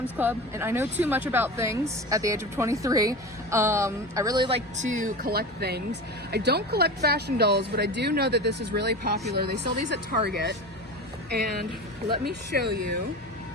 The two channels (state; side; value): normal; both; correlation 0.29